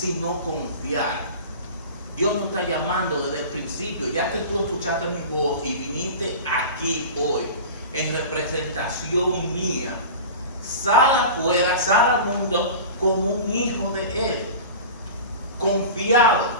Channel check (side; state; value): both; inverted; correlation -0.34